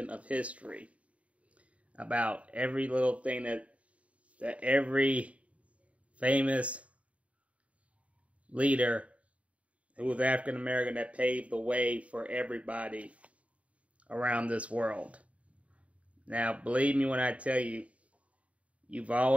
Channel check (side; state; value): left; late; 0.065 ms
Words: of history. About every little thing that every famous leader who was African American that paved the way for everybody around this world. Now, believe me when I tell you, you've